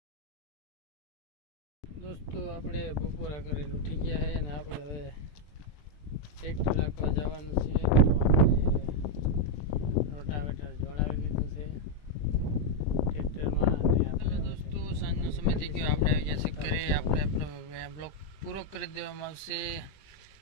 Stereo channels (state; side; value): late; right; 20 ms